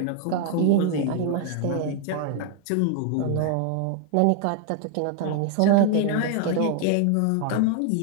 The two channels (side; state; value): both; different; correlation 0.00